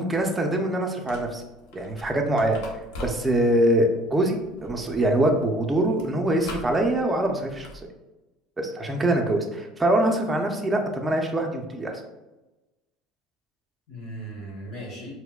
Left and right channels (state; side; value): normal; both; correlation 0.58